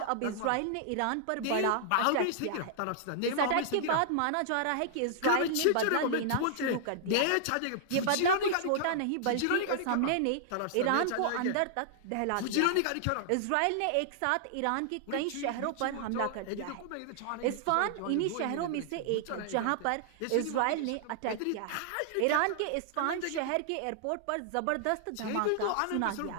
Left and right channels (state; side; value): different; both; correlation -0.01